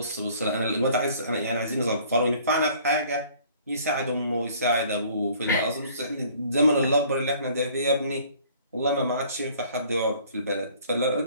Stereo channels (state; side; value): inverted; both; correlation -0.56